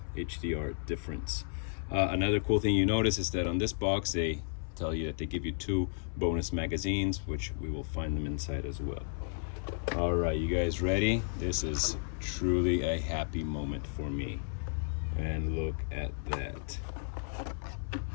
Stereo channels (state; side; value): silent; right; 56 dB below the other